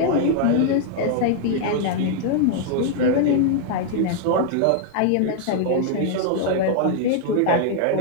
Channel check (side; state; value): both; different; correlation -0.01